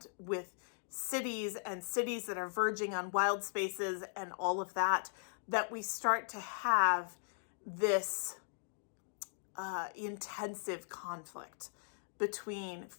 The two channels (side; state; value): right; silent; digital silence